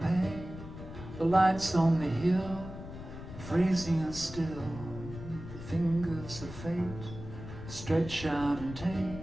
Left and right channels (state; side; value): noise; left; rumble, 12 dB below the sound